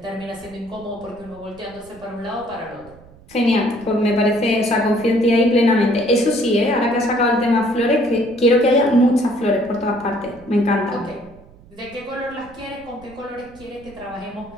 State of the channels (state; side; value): noise; right; rumble, 24 dB below the sound